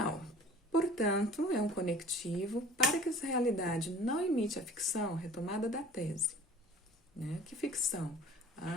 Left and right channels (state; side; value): normal; both; correlation 0.46